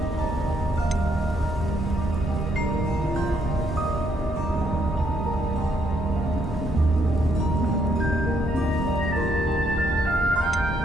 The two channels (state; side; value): normal; both; correlation 0.73